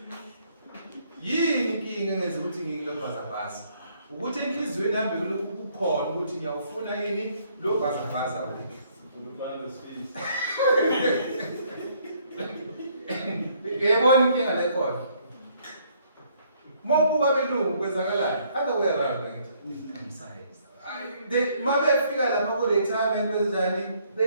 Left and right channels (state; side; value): inverted; both; correlation -0.66